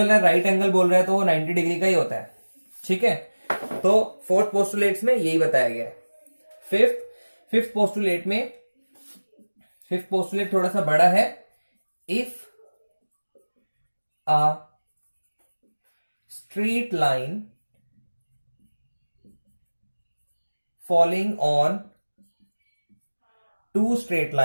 रहा है राइट एंगल बोल रहा है तो वो 90 डिग्री का ही होता है, ठीक है। तो फोर्थ पोस्टुलेट्स में यही बताया गया है। फिफ्थ पोस्टुलेट थोड़ा सा बड़ा है। If a straight line falling on two straight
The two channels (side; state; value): both; inverted; correlation -1.00